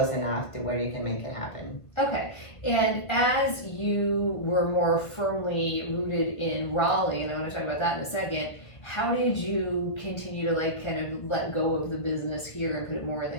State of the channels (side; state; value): right; late; 1.5 ms